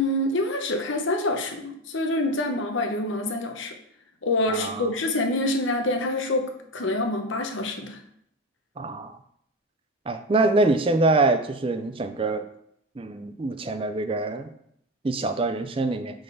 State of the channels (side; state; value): both; normal; correlation 0.19